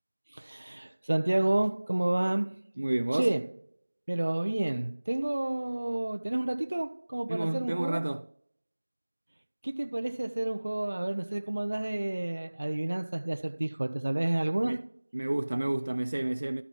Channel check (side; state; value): both; inverted; correlation -1.00